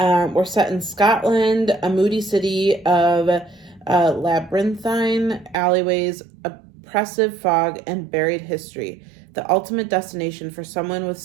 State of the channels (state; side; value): drops out; left; at 5.6 s